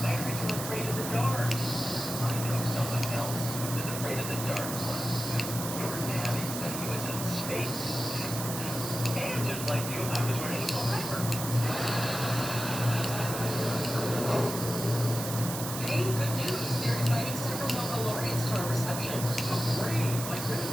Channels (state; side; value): noise; right; hiss, 6 dB below the sound